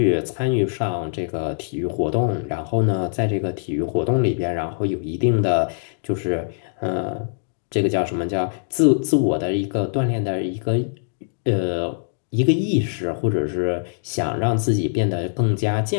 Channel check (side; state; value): right; silent; digital silence